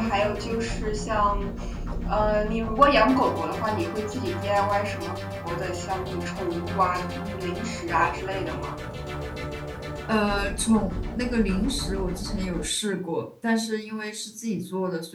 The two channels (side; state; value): both; identical; correlation 1.00